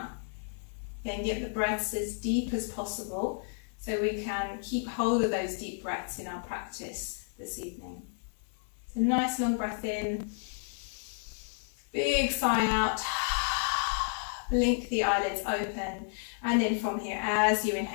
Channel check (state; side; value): silent; right; 57 dB below the other